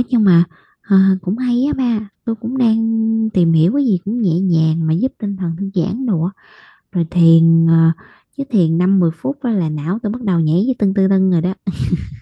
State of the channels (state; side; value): identical; both; correlation 1.00